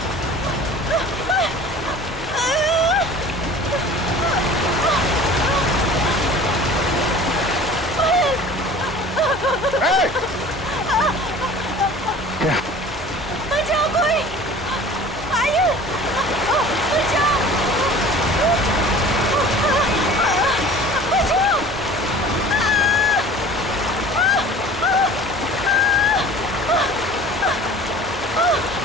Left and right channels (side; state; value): both; normal; correlation 0.43